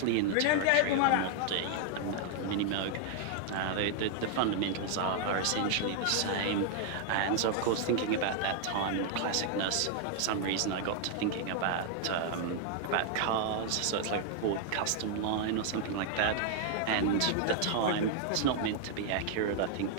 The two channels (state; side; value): different; both; correlation 0.00